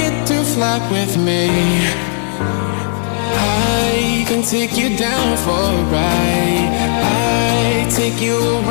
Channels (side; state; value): right; silent; 56 dB below the other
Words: to fly with me. I can take you down for a ride. I take you